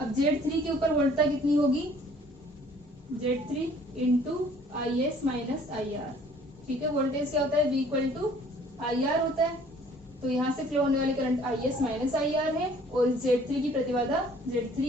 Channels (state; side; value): normal; both; correlation 0.56